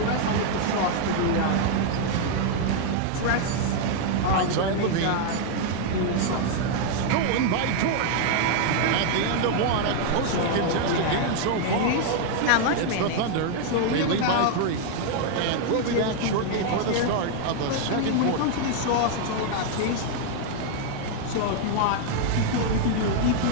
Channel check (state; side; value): different; both; correlation 0.00